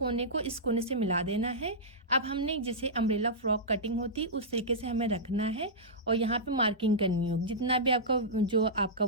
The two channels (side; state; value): both; normal; correlation -0.13